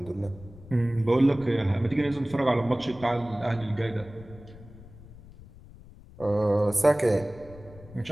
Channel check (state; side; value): noise; left; rumble, 19 dB below the sound